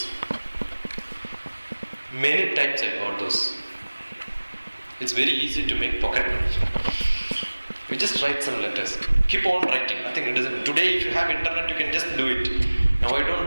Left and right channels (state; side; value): inverted; both; correlation -1.00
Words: Many times I got those. It's very easy to make pocket money. You just write some letters. Keep on writing. Nothing it doesn't. Today if you have internet, you can just do it. Now I